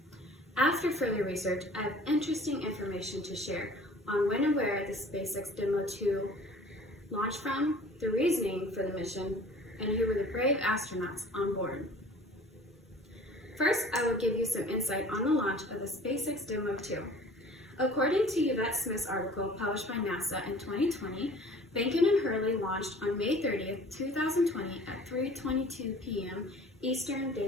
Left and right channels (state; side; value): normal; both; correlation 0.48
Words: After further research, I have interesting information to share on when and where the SpaceX Demo 2 launched from, the reasoning for the mission, and who were the brave astronauts on board. First, I will give you some insight on the launch of the SpaceX Demo 2. According to Yvette Smith's article published by NASA in 2020, Behnken and Hurley launched on May 30th, 2020 at 3:22 p.m. Eastern